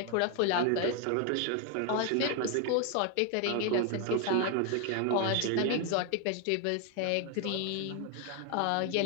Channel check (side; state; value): both; different; correlation 0.00